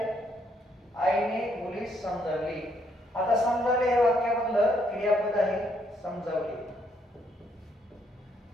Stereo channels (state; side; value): normal; both; correlation 0.71